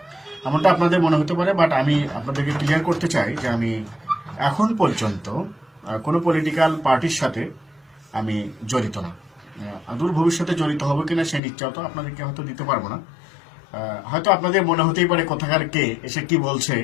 এমনটা আপনাদের মনে হতে পারে। বাট আমি আপনাদেরকে ক্লিয়ার করতে চাই যে আমি এখন পর্যন্ত কোনো পলিটিক্যাল পার্টির সাথে আমি জড়িত না। দূর ভবিষ্যতে জড়িত হবো কিনা সেই নিশ্চয়তা তো আপনাদেরকে হয়তো দিতে পারবো না। হয়তো আপনাদের মনে হতেই পারে কোথাকার কে এসে কি বলছে,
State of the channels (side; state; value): right; drops out; at 11.4 s